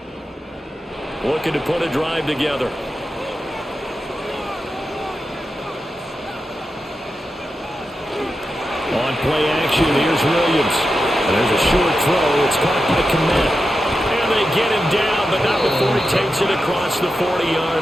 Looking to put a drive together. On play action, here's Williams. And there's a short throw. It's caught by Kmet. And they get him down, but not before he takes it across the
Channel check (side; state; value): both; normal; correlation 0.89